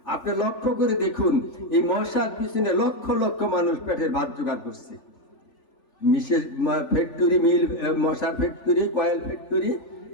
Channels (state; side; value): late; right; 3.4 ms